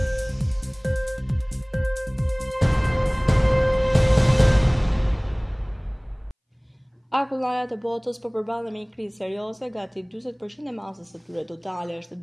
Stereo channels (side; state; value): both; identical; correlation 1.00